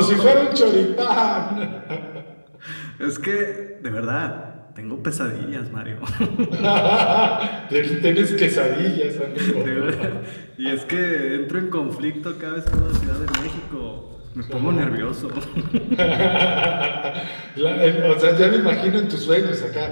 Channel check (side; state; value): both; inverted; correlation -1.00